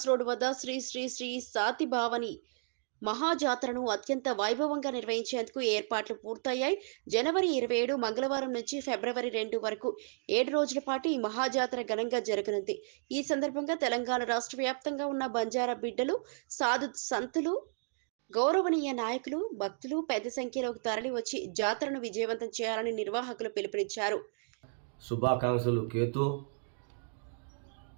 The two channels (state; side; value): silent; left; digital silence